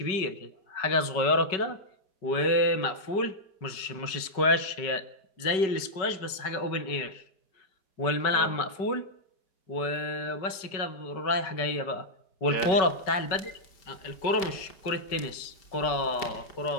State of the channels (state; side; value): late; right; 5.3 ms